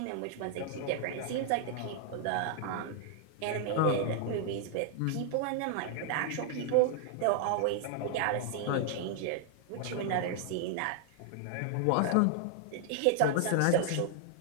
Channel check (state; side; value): different; both; correlation 0.00